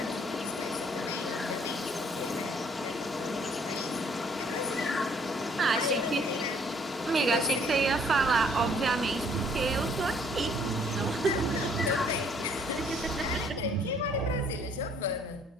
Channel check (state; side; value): normal; both; correlation 0.61